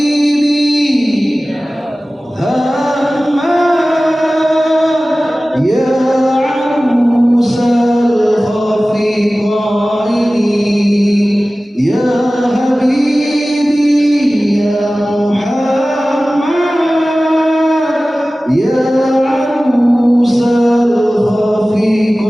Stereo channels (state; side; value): normal; both; correlation 0.97